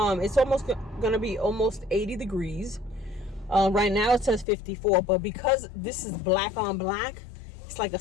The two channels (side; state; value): right; drops out; at 4.5 s